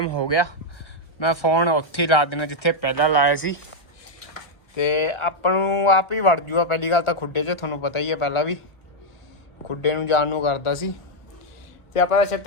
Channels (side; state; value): right; late; 1.2 ms